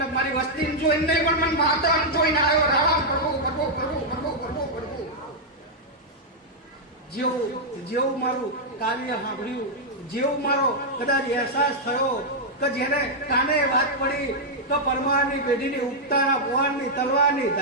મારી વસ્તી જોઈને નહીં પણ મને માતા જોઈને આવ્યો. રામ પ્રભુ જેવું મારું કાવ્ય સાંભળ્યું, જેવું મારો કદાચ અહેસાસ થયો કે જેને કાને વાત પડી કે પરમારની પેઢીની ઉગતાના ભગવાનની તલવારની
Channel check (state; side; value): normal; both; correlation -0.05